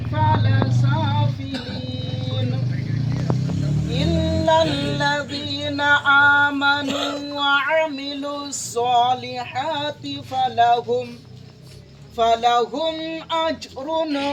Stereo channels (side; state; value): both; identical; correlation 1.00